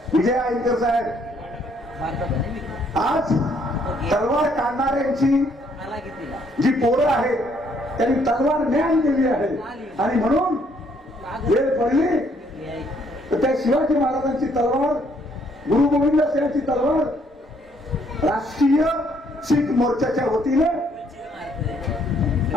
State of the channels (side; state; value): both; normal; correlation 0.67